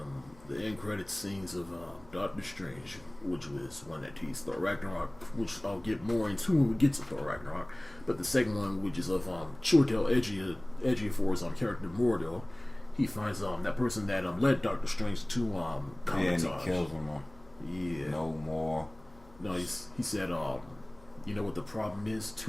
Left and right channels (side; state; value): left; noise; hum, 24 dB below the sound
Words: The end credit scenes of Doctor Strange, which was one that teased Thor Ragnarok, which I'll get more into when we get to Thor Ragnarok. But the second one, which is of Chiwetel Ejiofor's character Mordo, he finds that person that led Doctor Strange to Comitage. Yeah. No more. No, he said, you know what the problem is?